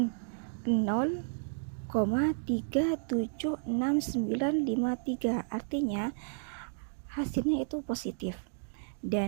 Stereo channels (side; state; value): left; silent; digital silence